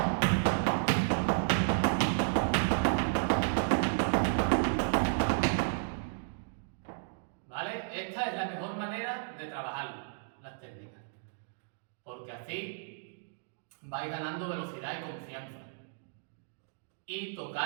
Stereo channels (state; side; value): silent; left; digital silence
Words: ¿Vale? Esta es la mejor manera de trabajar las técnicas, porque así vais ganando velocidad y confianza y